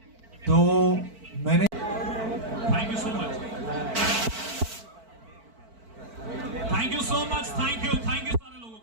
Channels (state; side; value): late; left; 4.5 ms